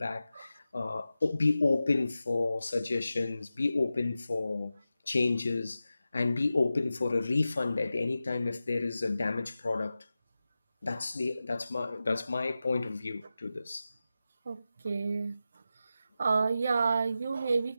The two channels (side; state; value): both; inverted; correlation -0.93